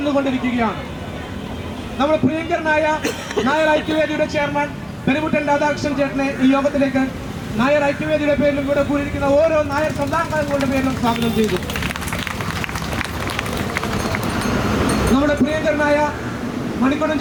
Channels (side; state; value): both; identical; correlation 1.00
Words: നമ്മുടെ പ്രിയങ്കരനായ നായർ ഐക്യവേദിയുടെ ചെയർമാൻ പെരുമുട്ടൻ രാധാകൃഷ്ണൻ ചേട്ടനെ ഈ യോഗത്തിലേക്ക് നായർ ഐക്യവേദിയുടെ പേരിലും ഇവിടെ കൂടിയിരിക്കുന്ന ഓരോ നായർ സമുദായങ്ങളുടെ പേരിലും സ്വാഗതം ചെയ്തു. നമ്മുടെ പ്രിയങ്കരനായ മണിക്കുടൻ